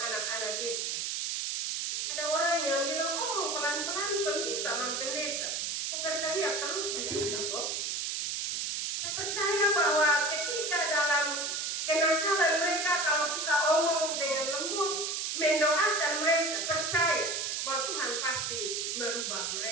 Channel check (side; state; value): right; noise; hiss, 1 dB below the sound